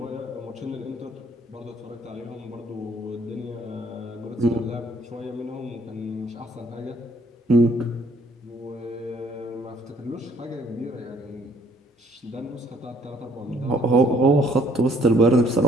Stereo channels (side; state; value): both; normal; correlation 0.62